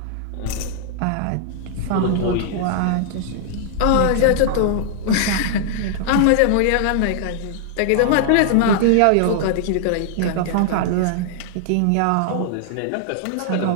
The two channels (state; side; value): different; both; correlation -0.01